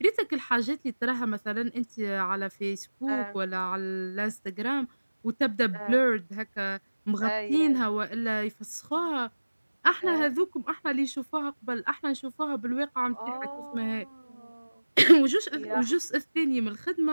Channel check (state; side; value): inverted; both; correlation -1.00